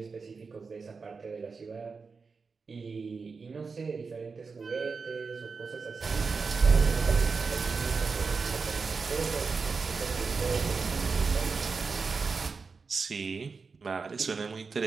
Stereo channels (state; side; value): quieter; left; 4.8 dB